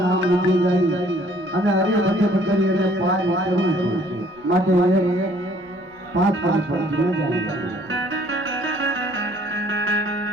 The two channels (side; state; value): right; noise; rumble, 30 dB below the sound